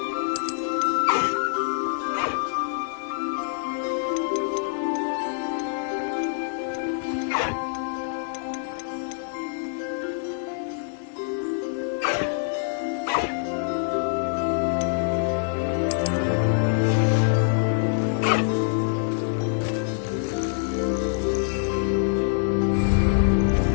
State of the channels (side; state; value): right; silent; digital silence